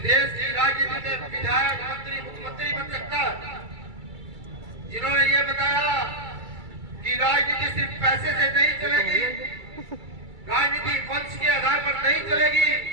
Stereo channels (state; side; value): late; left; 2.3 ms